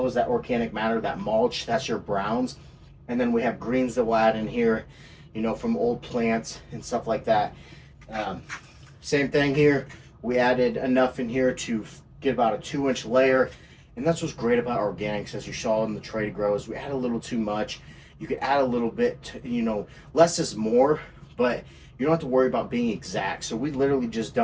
organic matter, that mulch, that's your browns. And then we have greens that we'll add in here, you know, from old plants and stuff like that. Same thing here. We added enough in here to get about a 2-inch layer. And that's what's great about organics, as you saw in the Tray2Grow, is we add a little too much. You could add a little bit, to, you know, less is more, but you don't have to worry about being exact. So we literally just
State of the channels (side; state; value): both; identical; correlation 1.00